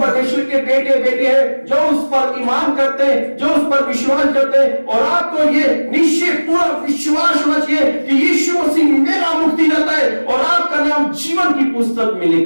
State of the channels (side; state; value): both; inverted; correlation -1.00